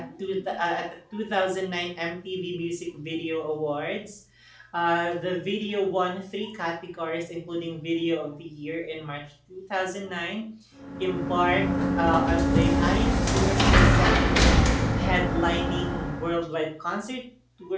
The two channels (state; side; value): identical; both; correlation 1.00